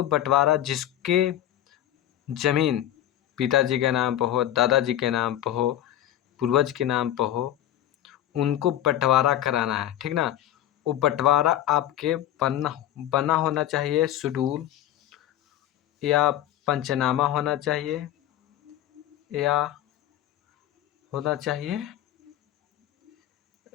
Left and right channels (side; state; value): right; quieter; 12.4 dB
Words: बंटवारा जिसके जमीन पिताजी के नाम पर हो, दादाजी के नाम पर हो, पूर्वज के नाम पर हो, उनको बंटवारा कराना है, ठीक ना। वो बंटवारा आपके बना बना होना चाहिए, शेड्यूल या पंचनामा होना चाहिए या होना चाहिए